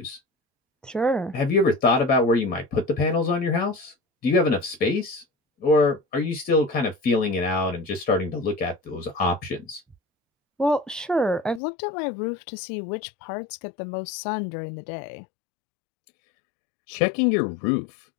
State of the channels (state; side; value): drops out; right; at 11.6 s